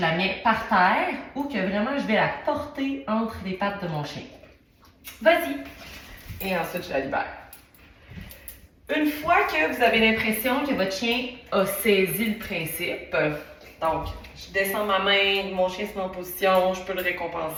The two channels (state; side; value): identical; both; correlation 1.00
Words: la mets par terre, ou que vraiment, je vais la porter entre les pattes de mon chien. Vas-y. Et ensuite, je la libère. Une fois que vous avez l'impression que votre chien a saisi le principe, donc, je descends ma main, mon chien se met en position, je peux le